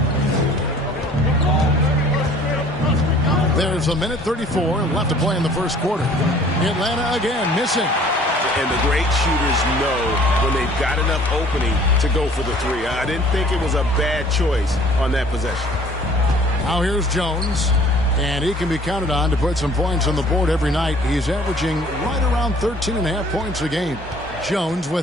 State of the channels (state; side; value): normal; both; correlation 0.53